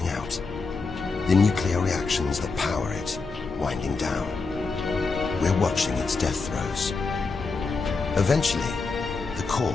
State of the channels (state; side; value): quieter; right; 4.2 dB